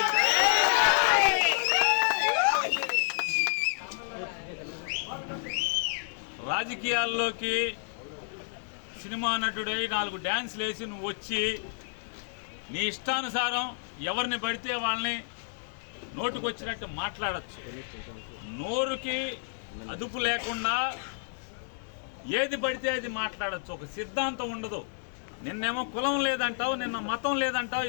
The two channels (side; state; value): right; silent; digital silence